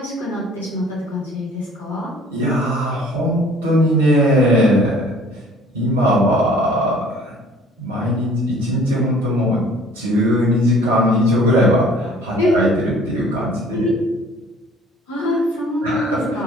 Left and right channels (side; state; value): both; normal; correlation 0.52